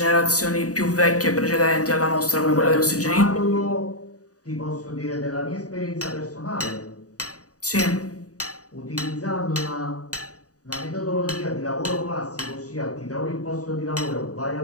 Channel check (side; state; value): right; late; 0.67 ms